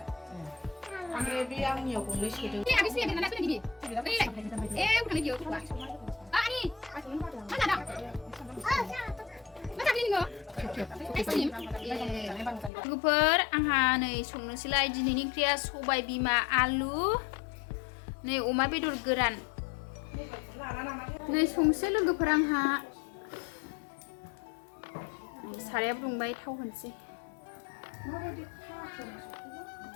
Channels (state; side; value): drops out; right; at 12.7 s